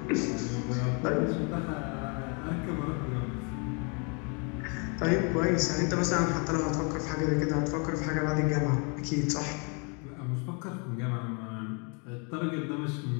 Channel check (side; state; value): right; quieter; 34.9 dB